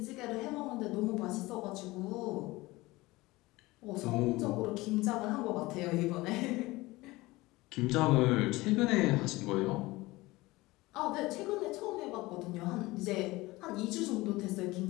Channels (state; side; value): quieter; right; 20.5 dB